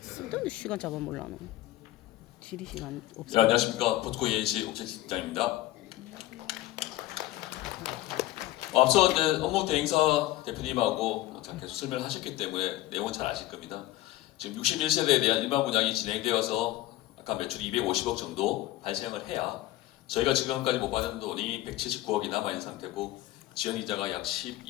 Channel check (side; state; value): right; quieter; 16.0 dB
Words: 쓸데없는 시간 잡아먹으려 는 지리 시간 네, 없어. 안녕하십니까. 포스코 ENC 옥재 실장입니다. 앞서 이제 업무 대행사 대표님하고 계속 설명을 하셨기 때문에 내용은 잘 아실 겁니다. 지금 61세대에 대한 일반 분양이 진행되어서 아까 매출 250억 정도 발생을 해야 저희가 지금까지 못 받은 돈이 179억이 남아있는 상태고 지연이자가 약